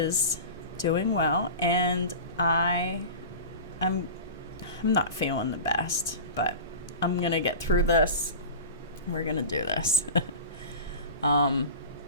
doing well, and I'm not feeling the best, but I'm gonna get through this. We're gonna do this.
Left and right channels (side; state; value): both; inverted; correlation -0.33